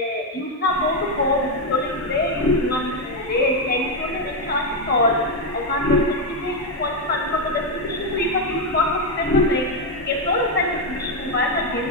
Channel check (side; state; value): both; normal; correlation 0.05